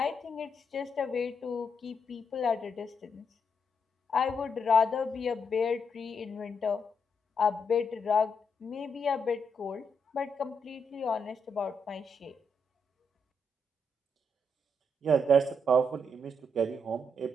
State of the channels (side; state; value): both; normal; correlation 0.79